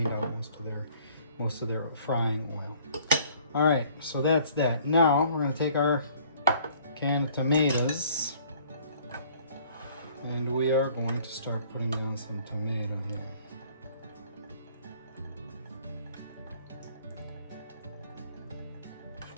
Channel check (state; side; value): inverted; both; correlation -0.56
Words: out most of their frying oil. All right, so that's that. Now we're gonna take our canned tomatoes, and we are going to start putting down some tomato here.